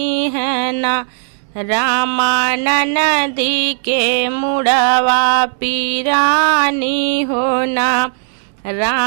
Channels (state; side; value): silent; left; digital silence